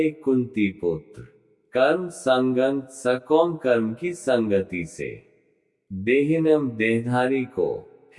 कुंती पुत्र। कर्म संगं सकौम कर्म की संगति से। देहिनम देहधारी को।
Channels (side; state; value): both; identical; correlation 1.00